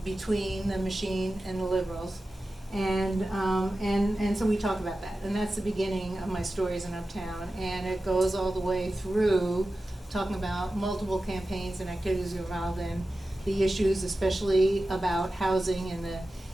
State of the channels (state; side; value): normal; both; correlation 0.94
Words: between the machine and the liberals. And so we talk about that, and that's the beginning of my stories in Uptown, and it goes all the way through talking about multiple campaigns and activities involved in the issues, especially about housing